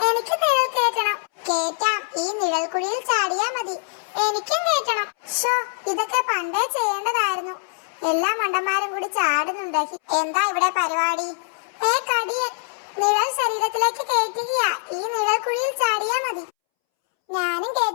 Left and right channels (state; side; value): silent; right; 63 dB below the other